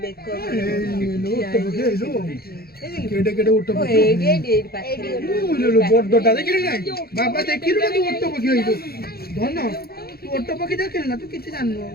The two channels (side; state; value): right; late; 0.45 ms